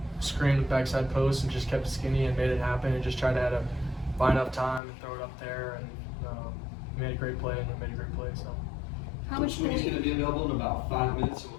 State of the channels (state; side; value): drops out; right; at 4.8 s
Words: screen with backside post, and just kept it skinny and made it happen, and just tried to buy enough time and throw it up there, and made a great play, and made a great play. So. How much Coach Sweeney's going to be available in about 5 minutes, so